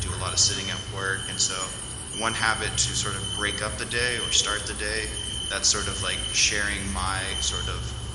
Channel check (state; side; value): identical; both; correlation 1.00